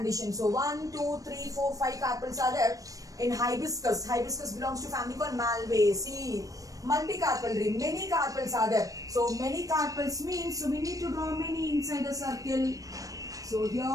So 1, 2, 3, 4, 5 carpels are there. In hibiscus, hibiscus belongs to family called Malvaceae. Multicarpellary, many carpels are there. So many carpels means, so we need to draw many inside the circle. So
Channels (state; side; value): late; left; 0.16 ms